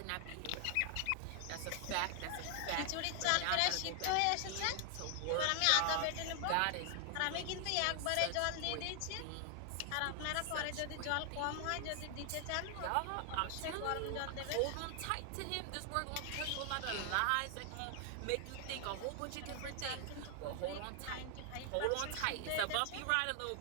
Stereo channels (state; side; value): different; both; correlation 0.00